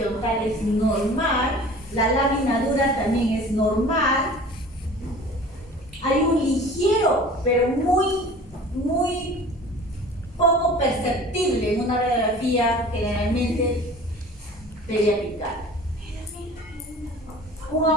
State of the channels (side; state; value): both; normal; correlation 0.43